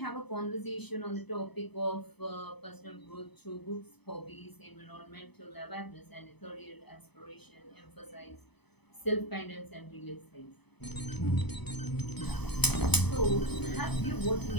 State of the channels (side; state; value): right; late; 0.98 ms